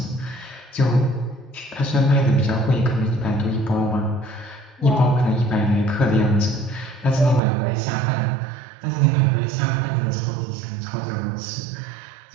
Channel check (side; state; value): left; drops out; at 7.4 s